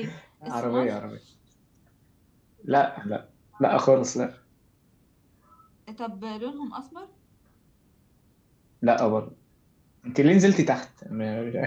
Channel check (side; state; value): both; identical; correlation 1.00